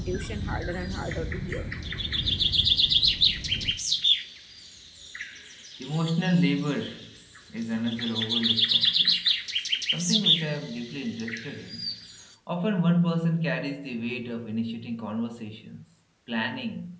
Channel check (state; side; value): identical; both; correlation 1.00